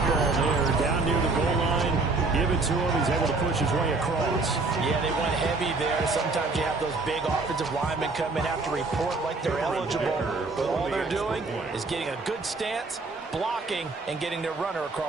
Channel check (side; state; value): left; quieter; 3.7 dB